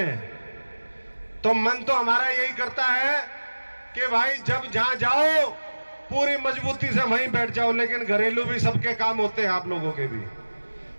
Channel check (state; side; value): inverted; both; correlation -1.00